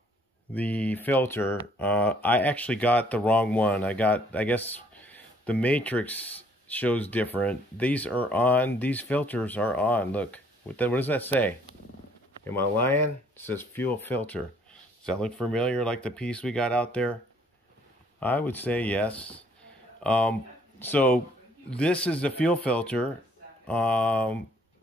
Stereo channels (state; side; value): normal; both; correlation 0.62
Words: the filter. I actually got the wrong one. I guess the matrix shows different. These are on. These filters are on. Look, what does that say? Am I lying? It says fuel filter. Does that look familiar, like the piece we got out there? I would say yes. So this is the fuel filter, and